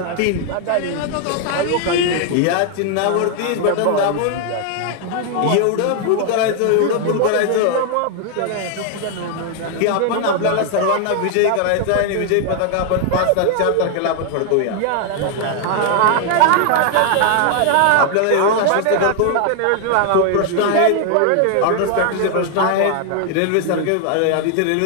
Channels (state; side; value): different; both; correlation 0.00